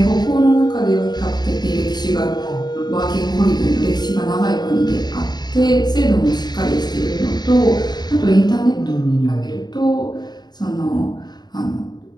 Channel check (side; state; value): right; late; 0.20 ms